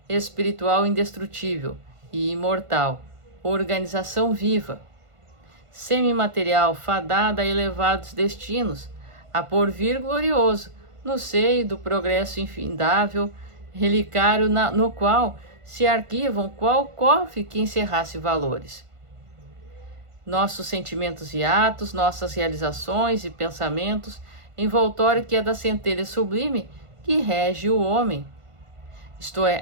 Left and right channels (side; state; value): left; late; 1.5 ms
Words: espiritual indestrutível e imortal, organização viva, semimaterial, fadada a elevados destinos, a porvir glorioso, no seio do progresso infindável, relicário no qual se arquivam qual cofre que encerrasse valores. Nossos sentimentos e atos, nossas realizações e pensamentos, envoltório que é da centelha sublime que rege o homem, isto é,